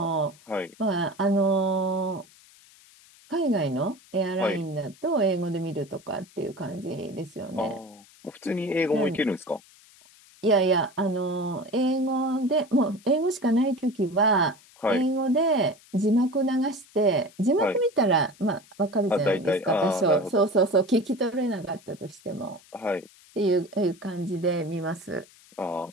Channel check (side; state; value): left; noise; hiss, 26 dB below the sound